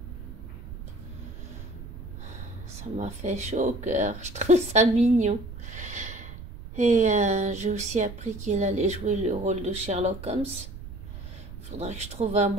ça m'a fait chaud au cœur. Je trouve ça mignon. Et j'ai aussi appris qu'il allait jouer le rôle de Sherlock Holmes. Il faudra que je trouve un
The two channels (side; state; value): right; noise; rumble, 12 dB below the sound